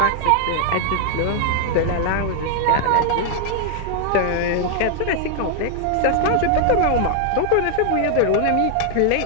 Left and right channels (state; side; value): different; both; correlation 0.00